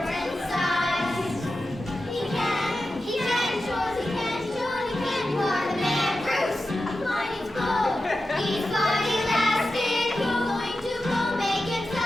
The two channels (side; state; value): both; normal; correlation 0.92